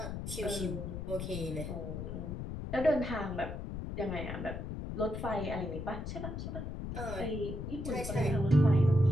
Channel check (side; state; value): left; noise; rumble, 6 dB below the sound